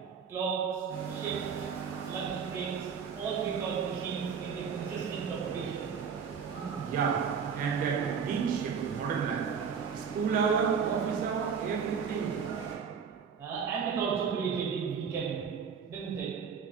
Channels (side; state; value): left; quieter; 6.5 dB